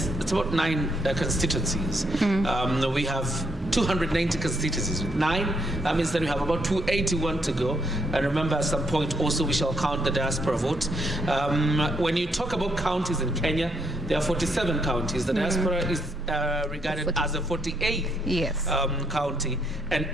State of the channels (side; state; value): both; normal; correlation 0.74